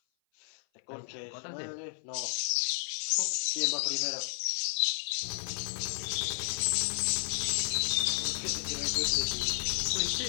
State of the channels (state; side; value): silent; right; 56 dB below the other